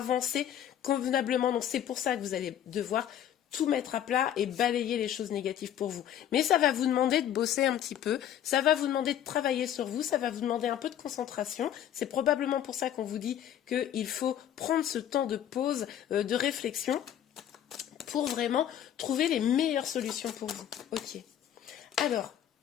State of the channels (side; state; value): right; quieter; 10.4 dB